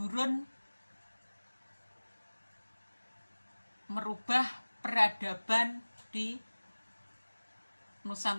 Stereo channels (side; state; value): both; inverted; correlation -1.00